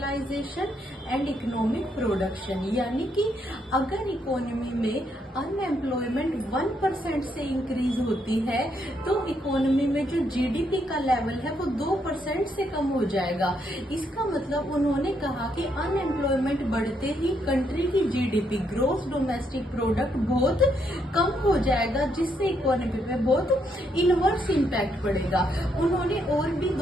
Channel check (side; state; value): both; normal; correlation 0.76